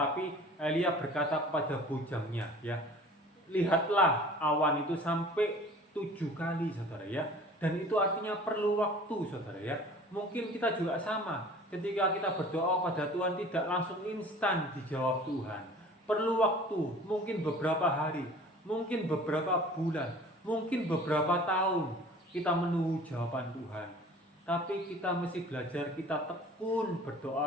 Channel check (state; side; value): normal; both; correlation 0.46